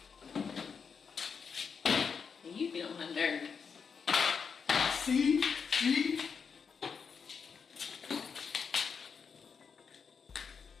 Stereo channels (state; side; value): quieter; right; 6.1 dB